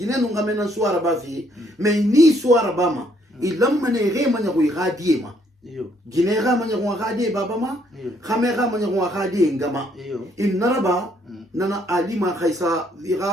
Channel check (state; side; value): normal; both; correlation 0.68